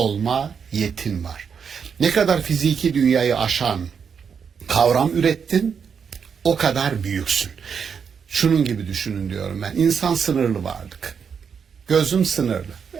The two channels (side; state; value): left; quieter; 6.7 dB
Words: yetin var. Ne kadar fiziki dünyayı aşan kavram ürettin, o kadar büyüksün. Şunun gibi düşünün diyorum ben. İnsan sınırlı varlık. Gözüm sınırlı.